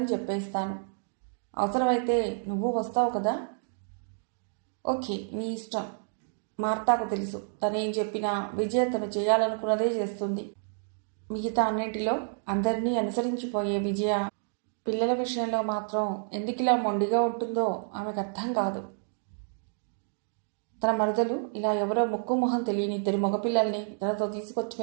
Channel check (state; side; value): silent; left; digital silence